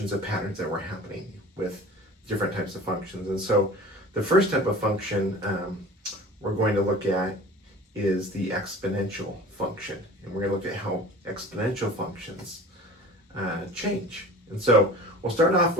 of patterns that were happening with different types of functions. And so the first type of function we're going to look at is the exponential function. And we're going to look at how exponential functions change. And so we'll start off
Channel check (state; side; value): normal; both; correlation 0.41